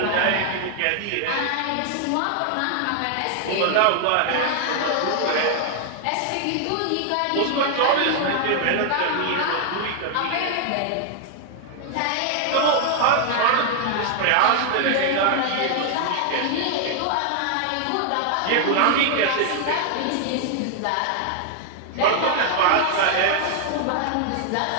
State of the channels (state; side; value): different; both; correlation 0.00